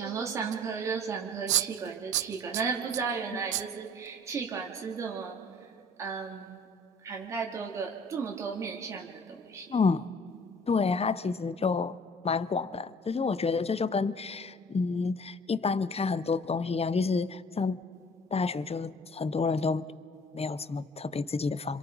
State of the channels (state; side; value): normal; both; correlation 0.52